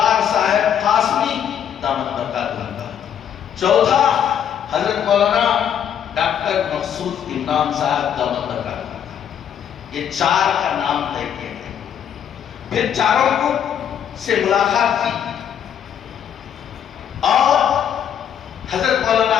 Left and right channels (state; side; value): quieter; right; 9.1 dB